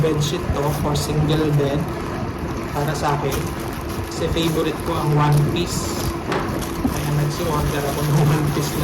to for single bed para sa akin. Kasi favorite ko ang one piece. Kaya nagsi-order ako ng one piece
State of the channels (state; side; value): identical; both; correlation 1.00